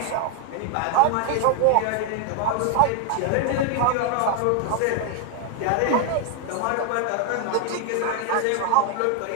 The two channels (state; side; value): different; both; correlation 0.00